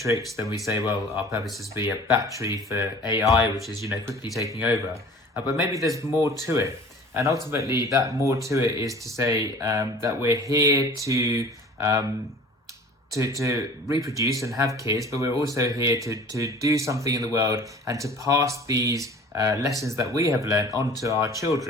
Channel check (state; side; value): normal; both; correlation 0.45